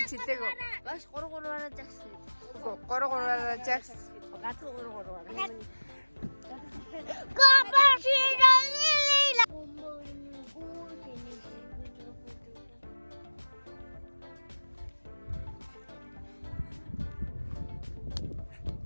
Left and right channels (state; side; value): inverted; both; correlation -1.00